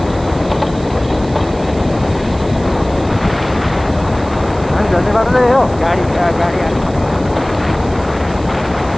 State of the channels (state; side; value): noise; right; hiss, 22 dB below the sound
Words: झर्ने बाटो चाहिँ हो गाडी